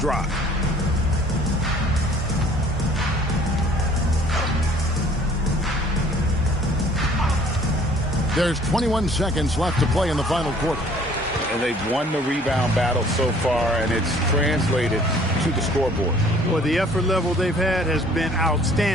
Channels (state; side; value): normal; both; correlation 0.55